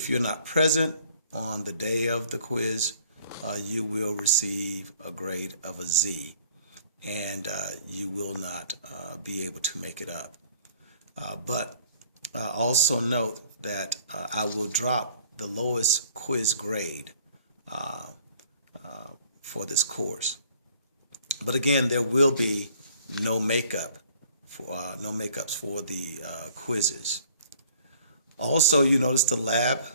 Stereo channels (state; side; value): inverted; both; correlation -0.55